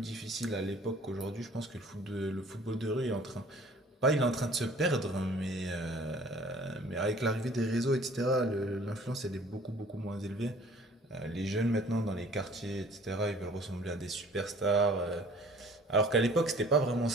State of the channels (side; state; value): both; normal; correlation 0.52